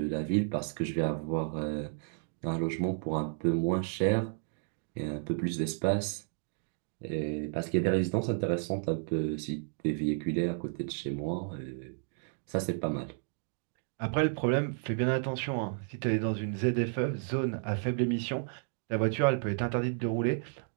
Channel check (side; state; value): left; silent; 56 dB below the other